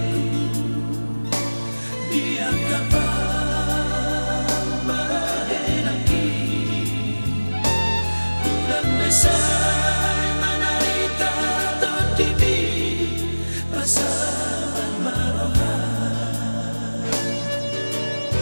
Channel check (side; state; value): both; inverted; correlation -1.00